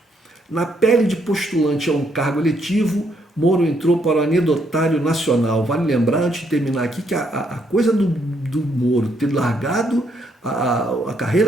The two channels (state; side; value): normal; both; correlation 0.73